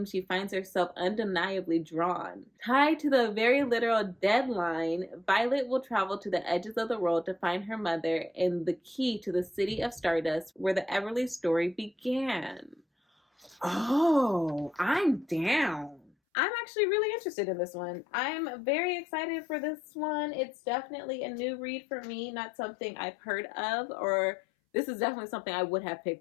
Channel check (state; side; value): drops out; right; at 16.1 s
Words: she finds herself undeniably drawn. Tied to the very literal deadline, Violet will travel to the edges of the world to find her mother and the key to the City of Stardust, where the Everly story began. Oh, I'm down. I'm actually really interested in this one. I'm very excited for this one. It's definitely a new read for me, not something I've heard of, or this is definitely something I would have